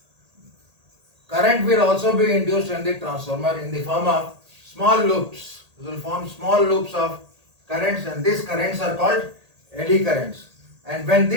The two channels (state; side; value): late; left; 1.8 ms